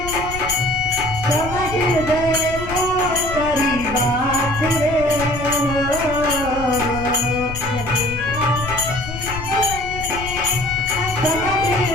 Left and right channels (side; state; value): left; noise; rumble, 10 dB below the sound